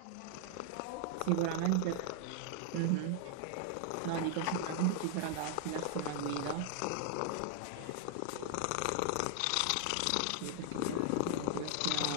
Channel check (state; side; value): different; both; correlation 0.00